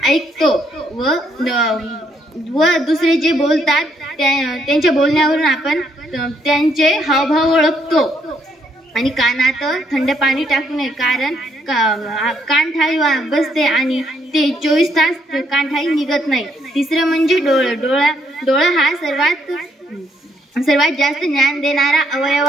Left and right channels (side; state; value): both; normal; correlation 0.72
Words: ऐकतो व दुसरे जे बोलतात त्यांच्या बोलण्यावरून आपण त्यांचे हावभाव ओळखतो। आणि कानात थंड पाणी टाकू नये, कारण कानठाई बसते आणि ते 24 तास कानठाई निघत नाही। तिसरं म्हणजे डोळे। डोळा हा सर्वात जास्त ज्ञान देणारा अवयव